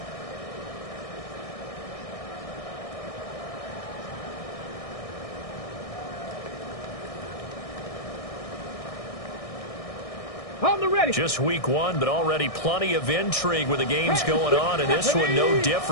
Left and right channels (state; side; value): late; right; 1.6 ms